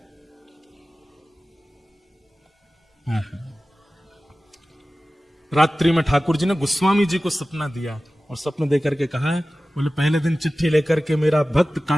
रात्रि में ठाकुर जी ने गोस्वामी जी को सपना दिया और सपने देकर के कहा है, बोले पहले दिन चिट्ठी लेकर के मेरा भक्त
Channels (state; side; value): normal; both; correlation 0.96